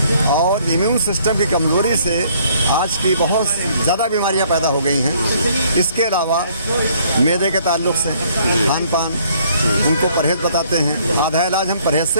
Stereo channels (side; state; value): both; inverted; correlation -0.63